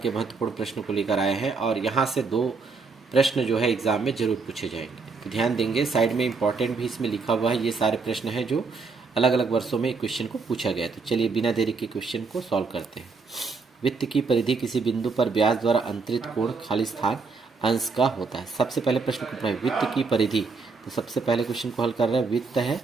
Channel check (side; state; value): left; quieter; 4.5 dB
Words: के महत्वपूर्ण प्रश्न को लेकर आए हैं और यहाँ से 2 प्रश्न जो है एग्जाम में जरूर पूछे जाएंगे, तो ध्यान देंगे। साइड में इंपॉर्टेंट भी इसमें लिखा हुआ है। ये सारे प्रश्न हैं जो अलग अलग वर्षों में क्वेश्चन को पूछा गया है। तो चलिए बिना देरी के क्वेश्चन को सॉल्व करते हैं। वित्त की परिधि किसी बिंदु पर ब्याज द्वारा अंतरित कोण खालिस्तान अंश का होता है। सबसे पहले प्रश्न को पढ़ें, वित्त की परिधि। तो सबसे पहले क्वेश्चन को हल कर रहे हैं। वित्त है,